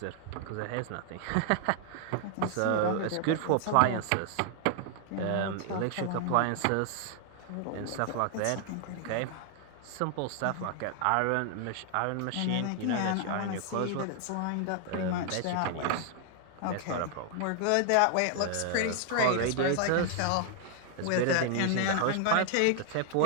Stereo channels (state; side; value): different; both; correlation 0.00